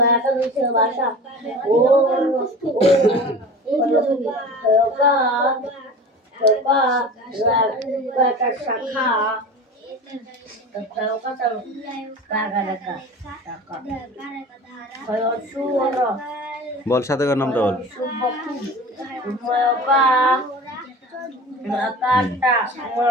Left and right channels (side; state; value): both; normal; correlation 0.36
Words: বল, সাথে কার নামটা বল।